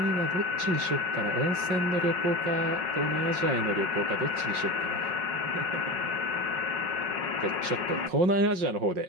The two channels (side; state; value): left; late; 5.5 ms